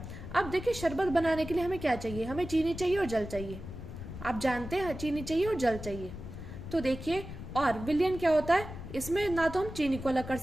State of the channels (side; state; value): left; noise; rumble, 10 dB below the sound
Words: अब देखिए शरबत बनाने के लिए हमें क्या चाहिए, हमें चीनी चाहिए और जल चाहिए। आप जानते हैं चीनी चाहिए और जल चाहिए। तो देखिए, और विलियन क्या होता है, इसमें ना तो हम चीनी को अलग कर